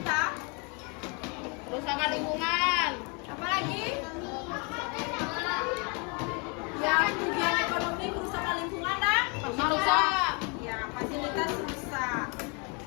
Kerusakan lingkungan. Apalagi? Ya, kerugian ekonomi, kerusakan lingkungan dan Rusak. ya, fasilitas rusak.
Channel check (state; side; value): quieter; right; 33.2 dB